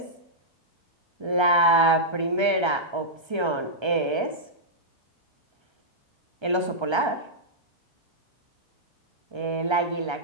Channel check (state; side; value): late; left; 1.3 ms